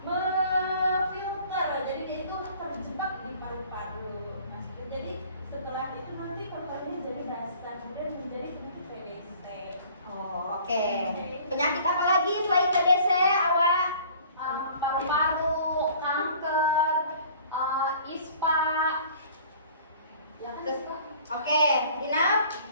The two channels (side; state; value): both; inverted; correlation -0.50